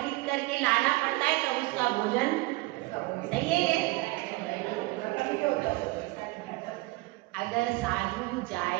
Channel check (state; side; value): quieter; left; 22.1 dB